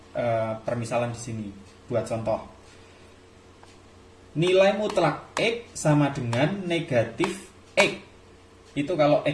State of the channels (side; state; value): both; identical; correlation 1.00